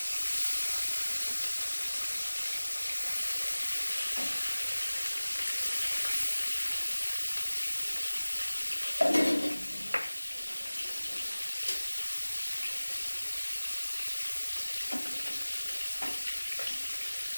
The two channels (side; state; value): both; inverted; correlation -1.00